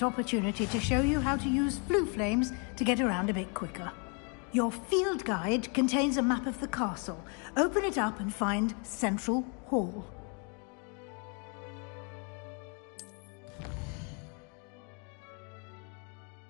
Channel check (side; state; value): right; quieter; 36.2 dB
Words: opportunity to show you how to use flue flames to get around a bit quicker. Your field guide contains a map of the castle. Open it up and find Central Hall.